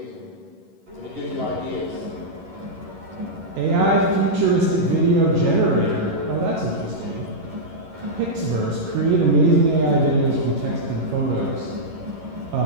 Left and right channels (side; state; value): left; late; 11 ms